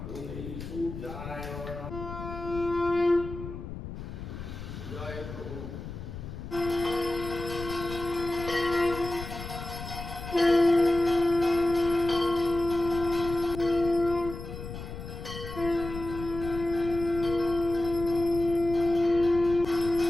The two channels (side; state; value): left; noise; rumble, 9 dB below the sound